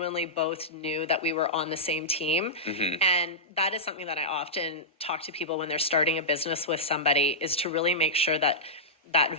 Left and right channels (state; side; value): normal; both; correlation -0.13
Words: both knew that we were on the same team. And that is something that I often talk to people when they're starting a business with somebody, is to really make sure that that